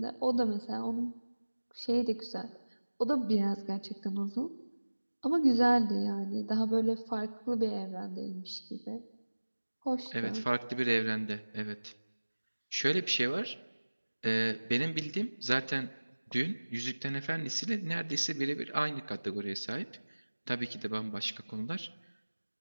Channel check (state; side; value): inverted; both; correlation -1.00